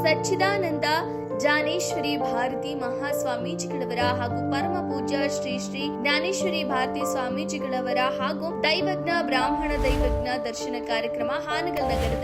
ಸಚ್ಚಿದಾನಂದ ಜ್ಞಾನೇಶ್ವರಿ ಭಾರತಿ ಮಹಾಸ್ವಾಮೀಜಿಗಳವರ ಹಾಗೂ ಪರಮ ಪೂಜ್ಯ ಶ್ರೀ ಶ್ರೀ ಜ್ಞಾನೇಶ್ವರಿ ಭಾರತಿ ಸ್ವಾಮೀಜಿಗಳವರ ಹಾಗೂ ದೈವಜ್ಞ ಬ್ರಾಹ್ಮಣ ದೈವಜ್ಞ ದರ್ಶನ ಕಾರ್ಯಕ್ರಮ ಹಾನಗಲ್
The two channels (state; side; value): identical; both; correlation 1.00